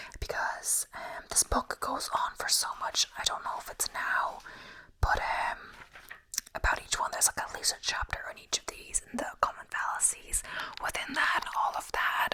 because this book goes on for so much. I don't know if it's now, but about each one there's like at least a chapter on each of these and the common fallacies within that and all of that,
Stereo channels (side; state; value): both; identical; correlation 1.00